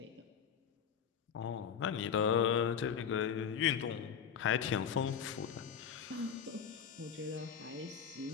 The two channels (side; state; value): right; quieter; 7.6 dB